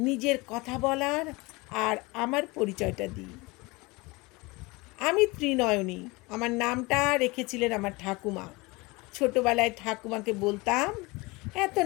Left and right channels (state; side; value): quieter; right; 24.3 dB